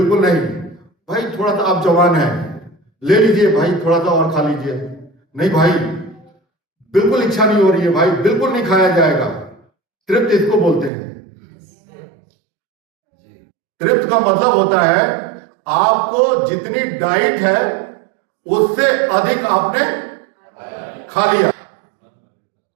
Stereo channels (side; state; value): left; drops out; at 10.9 s